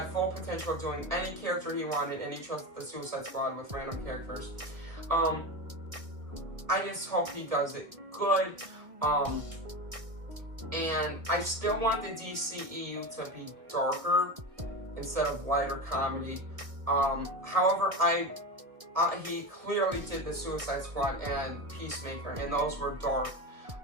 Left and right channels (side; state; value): left; late; 1.5 ms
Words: full potential of doing any character he wanted, and he chose the Suicide Squad with random characters. I just hope he does it good. And I still want the DCEU to be darker instead of lighter comedy. However, he clearly did the Suicide Squad and Peacemaker, and those were dark,